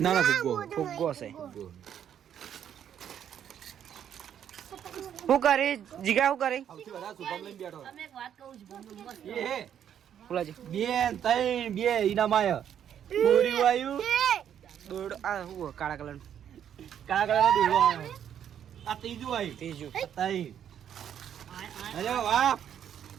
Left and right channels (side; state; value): left; quieter; 9.4 dB